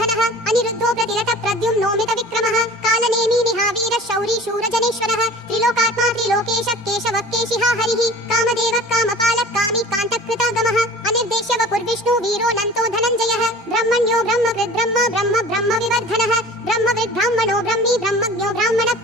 अनिरुद्धो प्रतिरतः प्रद्युम्नो मितविक्रमः कालनेमी निहावीरः शौरी शूरजनेश्वरः त्रिलोकात्मा त्रिलोकेशः केशवः केशिहा हरिः कामदेवः कामपालः कामी कान्तकृतागमः अनिर्देश्य वपुर्विष्णु वीरो नन्तो धनञ्जयः ब्रह्मण्यो ब्रह्मकृद् ब्रह्म ब्रह्म ब्रह्म विवर्धनः ब्रह्मविद् ब्राह्मणो ब्रह्मी ब्रह्मज्ञो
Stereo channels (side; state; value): both; normal; correlation 0.42